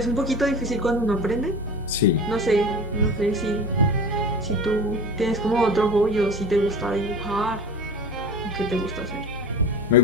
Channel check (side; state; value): both; normal; correlation 0.34